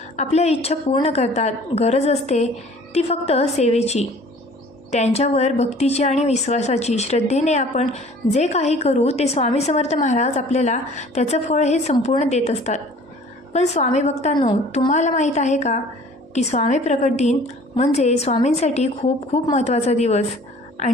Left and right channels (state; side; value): normal; both; correlation 0.50